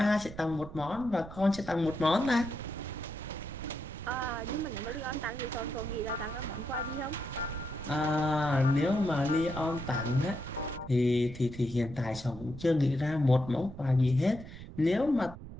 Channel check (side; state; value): right; noise; rumble, 14 dB below the sound